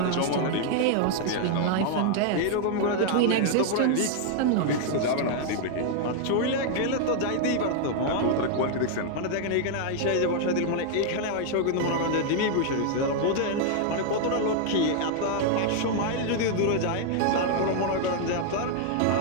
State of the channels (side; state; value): both; different; correlation 0.00